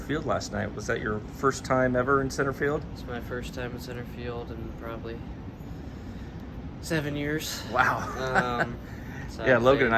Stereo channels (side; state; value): both; identical; correlation 1.00